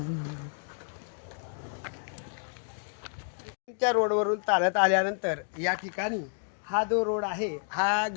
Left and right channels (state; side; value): silent; right; 57 dB below the other